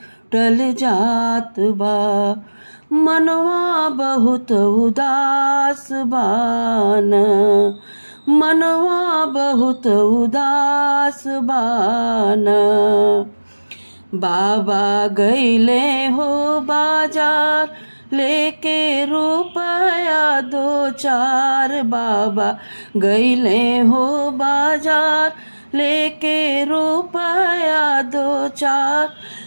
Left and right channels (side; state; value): both; inverted; correlation -1.00